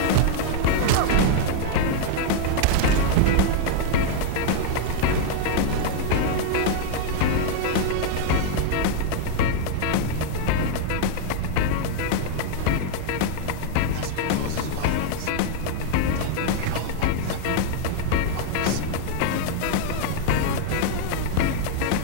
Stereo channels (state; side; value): different; both; correlation 0.00